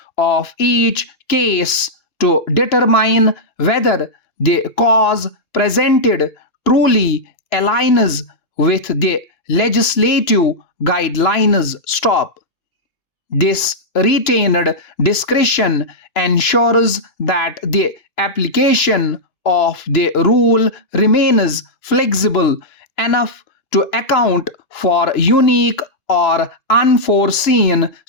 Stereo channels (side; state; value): right; late; 2.9 ms